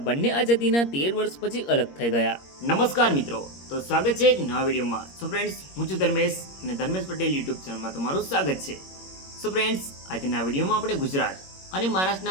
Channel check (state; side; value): late; right; 21 ms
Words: બંને આઝાદીના 13 વર્ષ પછી અલગ થઈ ગયા? નમસ્કાર મિત્રો, તો સ્વાગત છે એક નવા વિડીયોમાં. સો ફ્રેન્ડ્સ, હું છું ધર્મેશ અને ધર્મેશ પટેલ યુટ્યુબ ચેનલમાં તમારું સ્વાગત છે. સો ફ્રેન્ડ્સ, આજના વિડીયોમાં આપણે ગુજરાત અને